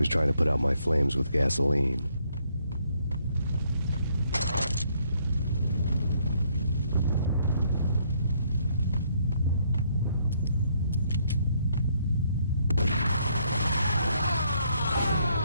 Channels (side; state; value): both; inverted; correlation -0.70